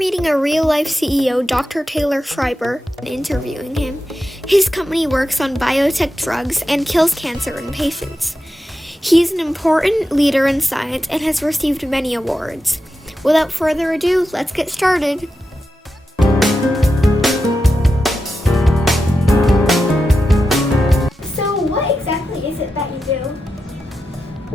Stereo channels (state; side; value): normal; both; correlation 0.90